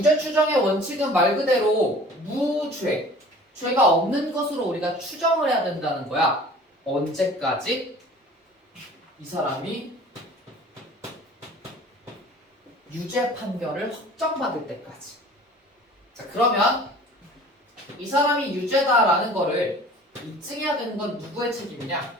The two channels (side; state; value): both; normal; correlation 0.46